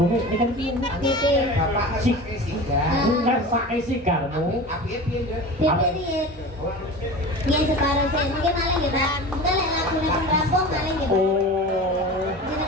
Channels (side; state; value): both; normal; correlation 0.33